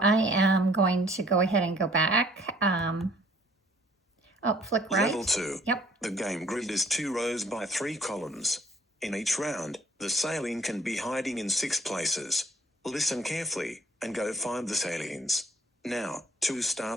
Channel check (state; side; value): normal; both; correlation 0.59